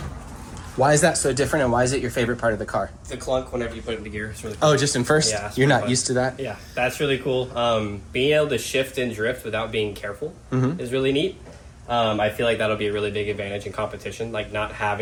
Why is that so different, and why is it your favorite part of the car? The clunk whenever you put it into gear. It's really cool. Oh, just in first? Yeah. You're not used to that? Yeah, that's really cool. Being able to shift and drift without being careful is really neat. I feel like that'll be a really big advantage in competition, like not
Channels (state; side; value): identical; both; correlation 1.00